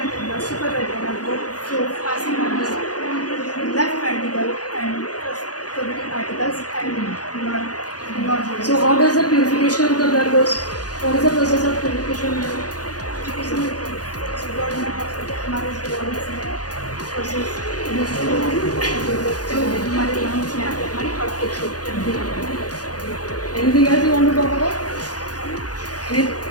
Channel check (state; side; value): late; right; 0.68 ms